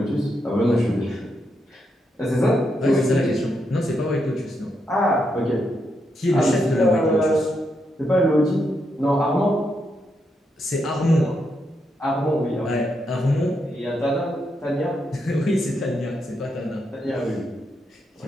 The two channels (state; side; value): normal; both; correlation 0.81